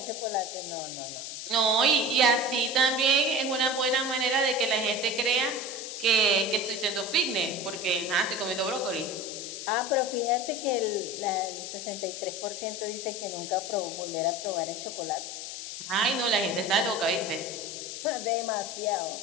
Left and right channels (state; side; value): noise; left; hiss, 8 dB below the sound